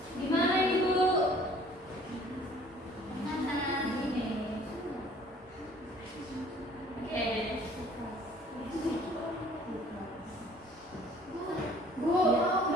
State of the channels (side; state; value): both; normal; correlation 0.54